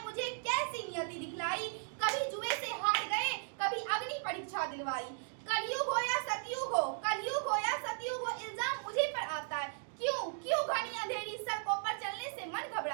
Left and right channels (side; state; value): left; silent; digital silence